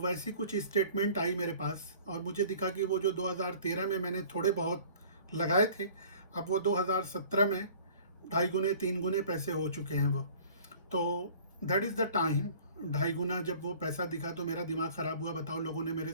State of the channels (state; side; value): inverted; both; correlation -0.49